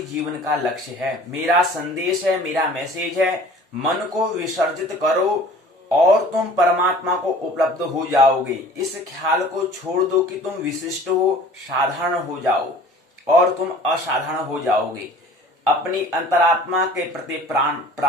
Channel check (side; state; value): both; normal; correlation 0.47